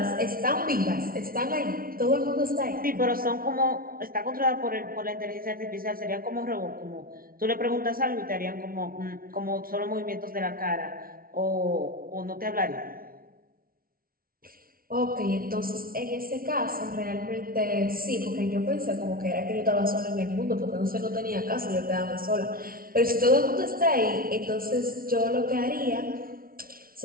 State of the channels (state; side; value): late; left; 0.43 ms